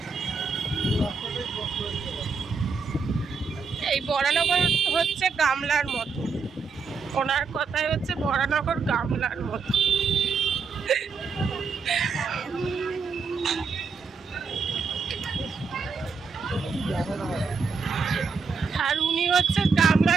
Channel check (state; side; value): quieter; left; 5.0 dB